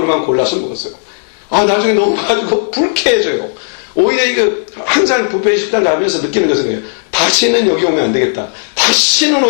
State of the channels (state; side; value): silent; right; digital silence